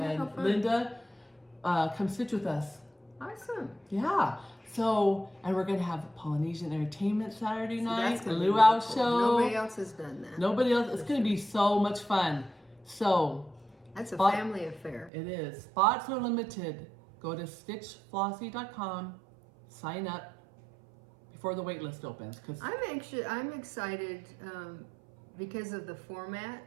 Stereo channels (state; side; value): drops out; left; at 15.1 s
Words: Linda, come stitch with us. Awesome. Yeah. So, and we're going to have Polynesian entertainment Saturday night, a luau show. Nobody else has done that. Nobody else. It's going to be so much fun. So, that's a family affair. It is. Spots are limited. Go to stitchflossy.com, sign up before the wait list opens. I'm excited because of the format.